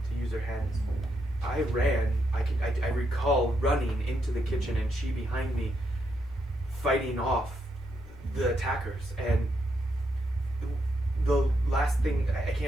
to use her hands. I ran. I recall running into the kitchen and she behind me, fighting off the attackers. And the last thing, I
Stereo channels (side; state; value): both; normal; correlation 0.80